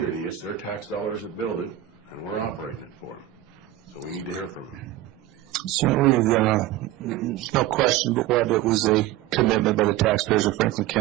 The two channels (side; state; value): left; quieter; 14.0 dB